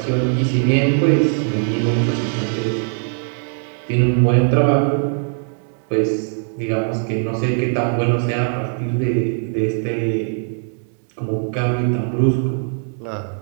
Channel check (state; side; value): silent; left; 56 dB below the other